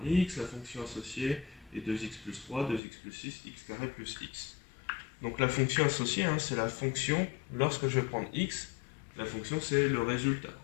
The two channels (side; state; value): right; drops out; at 2.8 s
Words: x, la fonction associée est 2x plus 3, 2x plus 6, x carré plus x. Donc la fonction associée, hein, c'est la fonction, lorsque je vais prendre x, la fonction c'est le résultat.